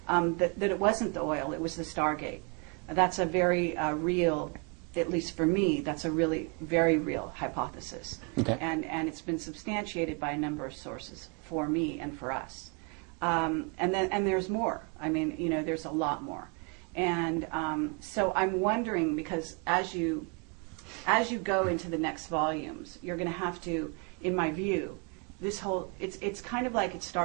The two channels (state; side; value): quieter; left; 34.5 dB